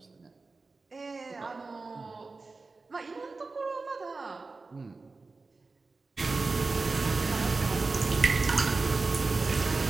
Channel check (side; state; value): left; quieter; 3.8 dB